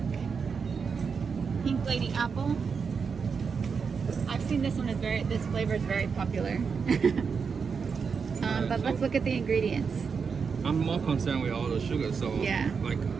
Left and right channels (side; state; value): left; quieter; 5.7 dB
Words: lady apple. I've seen this one this flavor is very popular. But let's look at the ingredients. I'm more concerned with all the sugar, so yeah. Like